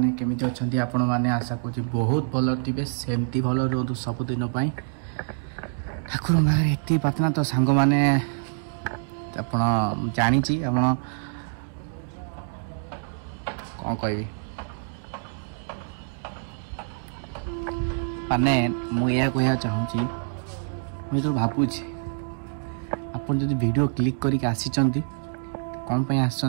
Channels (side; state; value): left; silent; digital silence